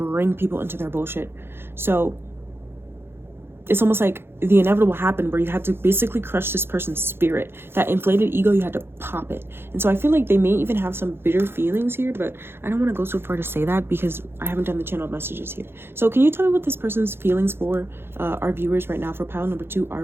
people into their bullshit. So it's almost like the inevitable happened where you had to basically crush this person's spirit. That inflated ego, you had to pop it. And so I feel like they may even have some bitter feelings here, but I don't want to go so far to say that because I haven't done the channel messages here. So can you tell me what this person's feelings for our viewers right now, for pile number 2,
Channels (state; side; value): late; left; 0.11 ms